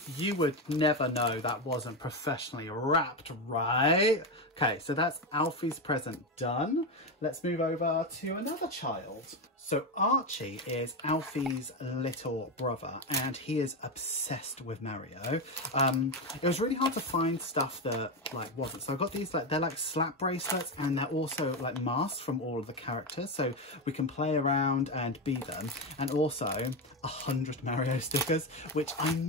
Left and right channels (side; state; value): both; normal; correlation 0.13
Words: You would never know that wasn't professionally wrapped, right? Okay, so that's Alfie's present done. Let's move over to another child. So Archie is Alfie's little brother and he is obsessed with Mario. It was really hard to find stuff that like wasn't. So I got these, like they're like slap bracelets and they're also like masks from all of the characters. So we can play around and be them. And also 100 Mario stickers, which I